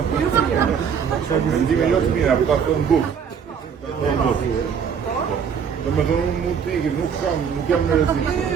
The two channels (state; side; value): quieter; left; 7.1 dB